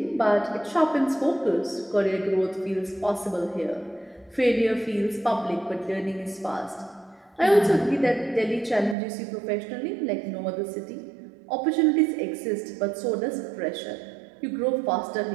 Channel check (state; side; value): drops out; left; at 9.0 s